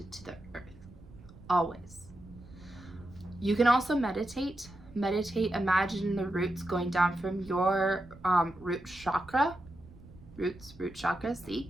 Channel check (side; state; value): right; noise; rumble, 20 dB below the sound